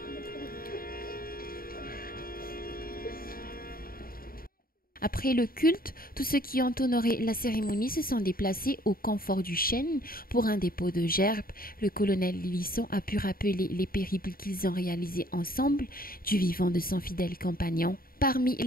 Après le culte, tous ceux qui ont honoré la cérémonie se sont déplacés au confort du chêne pour un dépôt de gerbes. Le colonel Lilisson a pu rappeler les périples qu'ils ont réalisés ensemble du vivant de son fidèle compagnon. Parmi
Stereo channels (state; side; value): late; right; 0.42 ms